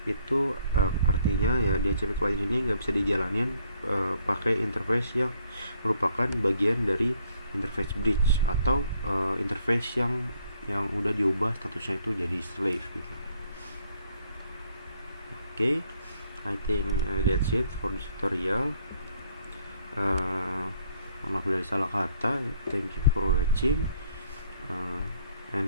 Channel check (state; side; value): inverted; both; correlation -0.67